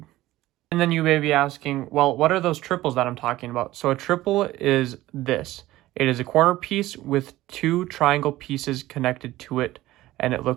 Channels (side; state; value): left; quieter; 16.4 dB